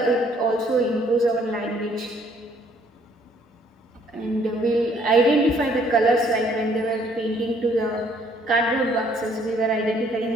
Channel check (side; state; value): both; normal; correlation 0.63